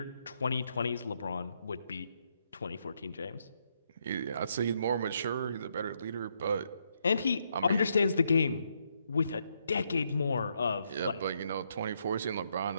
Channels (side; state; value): both; inverted; correlation -0.76